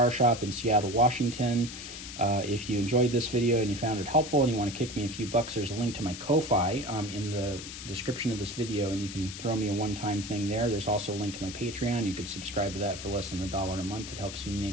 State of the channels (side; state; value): left; noise; hiss, 10 dB below the sound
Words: Shop in Seattle, Washington. If you enjoyed this video and you found it helpful and you want to kick me a few bucks, there's a link to my Ko-Fi in the description of this video, and you can throw me a one-time thing there. There's also a link to my Patreon. You could subscribe to that for less than $1 a month. It helps me